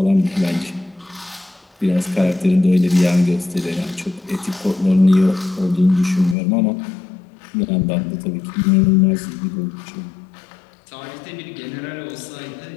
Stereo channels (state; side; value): drops out; right; at 6.4 s